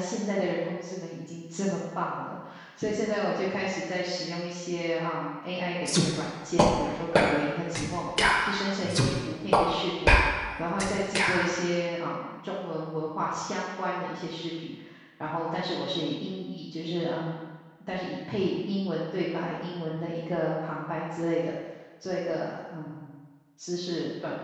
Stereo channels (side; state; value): both; identical; correlation 1.00